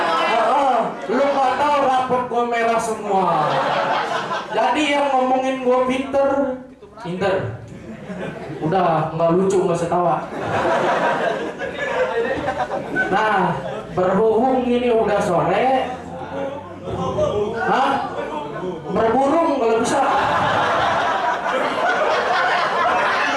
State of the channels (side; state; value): both; identical; correlation 1.00